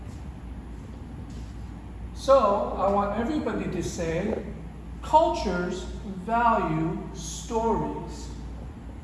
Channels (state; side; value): identical; both; correlation 1.00